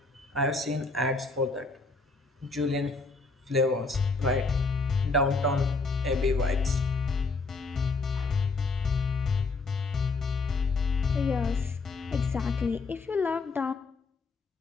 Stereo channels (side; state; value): right; quieter; 3.8 dB